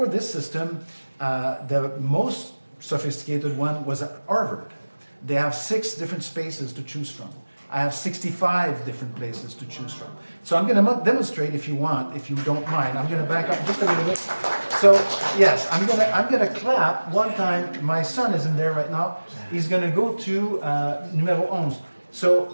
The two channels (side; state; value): both; inverted; correlation -1.00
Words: this system, the most sophisticated one was at Harvard. They have 6 different spaces to choose from. I have 65 different places to choose from. So I'm going to demonstrate if you want, if you don't mind. I'm going to back up just a little bit. So yes, I'm going to clap one time. My son is in there right now. He's going to go to numero 11.